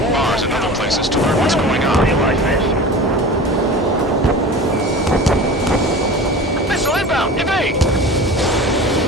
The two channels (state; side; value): normal; both; correlation 0.35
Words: in bars and other places to learn what's going on. Missile inbound! Evade!